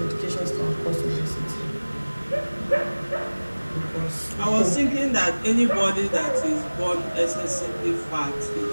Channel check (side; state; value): both; inverted; correlation -1.00